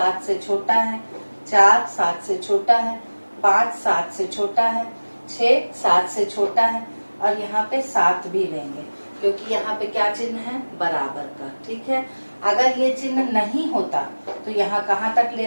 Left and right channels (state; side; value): inverted; both; correlation -1.00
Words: से छोटा है, 4 7 से छोटा है, 5 7 से छोटा है, 6 7 से छोटा है, और यहाँ पे 7 भी लेंगे क्योंकि यहाँ पे क्या चिन्ह है, बराबर का, ठीक है। अगर ये चिन्ह नहीं होता तो यहाँ कहाँ तक